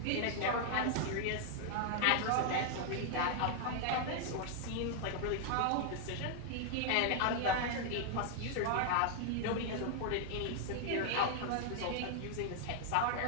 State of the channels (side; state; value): both; different; correlation 0.00